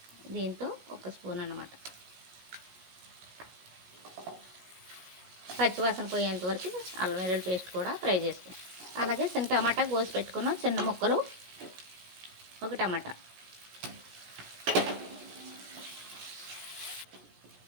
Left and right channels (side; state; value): left; late; 17 ms